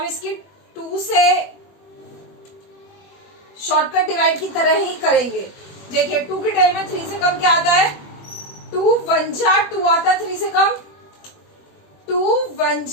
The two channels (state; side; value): late; right; 21 ms